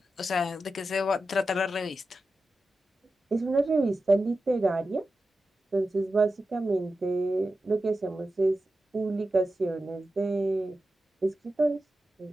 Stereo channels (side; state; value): both; normal; correlation 0.92